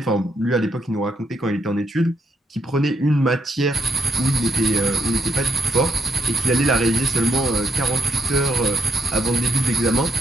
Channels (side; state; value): both; normal; correlation 0.79